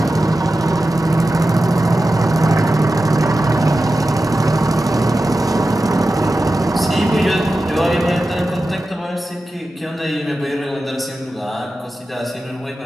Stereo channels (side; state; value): both; normal; correlation 0.93